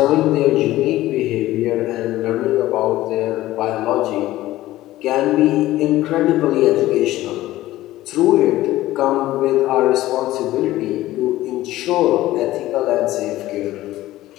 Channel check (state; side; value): quieter; right; 15.9 dB